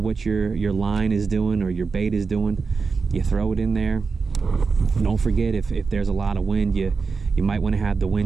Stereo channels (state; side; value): quieter; left; 4.8 dB